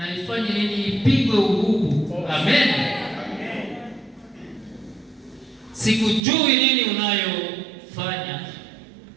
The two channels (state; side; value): drops out; left; at 6.2 s